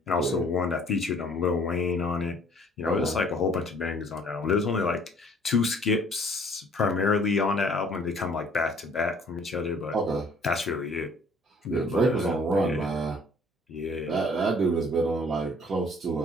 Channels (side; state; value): both; normal; correlation 0.57